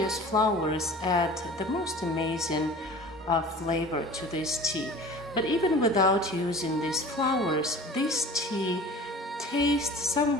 flowers add the most amazing flavor to this tea. But even without using these flowers, this tea tastes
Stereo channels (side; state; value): both; normal; correlation 0.42